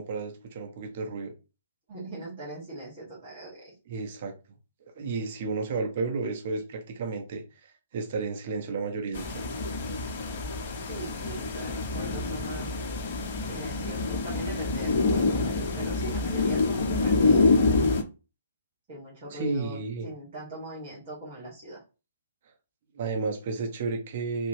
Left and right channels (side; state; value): both; inverted; correlation -0.58